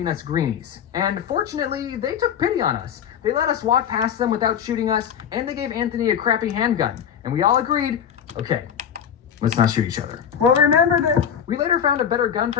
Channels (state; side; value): quieter; right; 8.4 dB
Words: us greenies. And fortunately, they took pity on us. They let us walk past them without shooting us, and they gave Anthony a crappy handgun. And we all agreed, okay, let's not shoot each other. Well, remember this. We later found a better gun